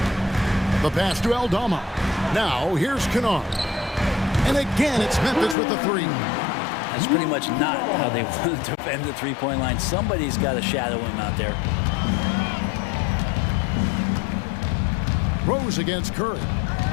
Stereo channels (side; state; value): right; drops out; at 5.6 s